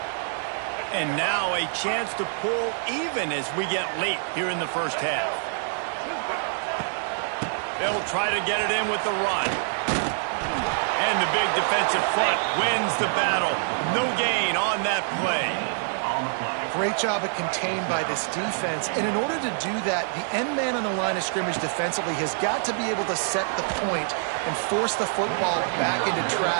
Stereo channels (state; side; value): silent; left; digital silence